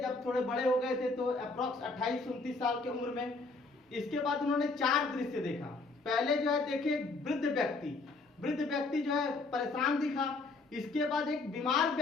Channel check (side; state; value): right; quieter; 3.6 dB